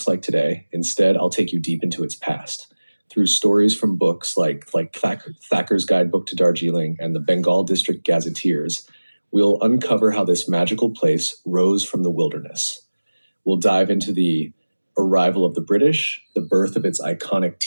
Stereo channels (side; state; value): both; inverted; correlation -1.00